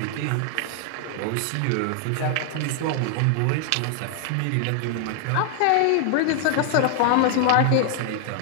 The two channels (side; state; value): both; different; correlation 0.00